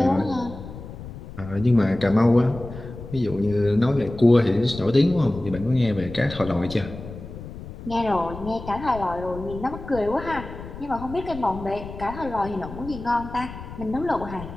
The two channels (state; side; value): noise; left; rumble, 12 dB below the sound